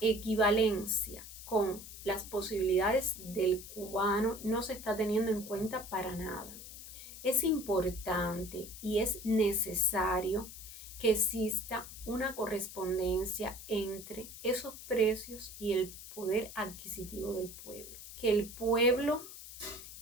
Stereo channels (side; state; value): left; noise; hiss, 13 dB below the sound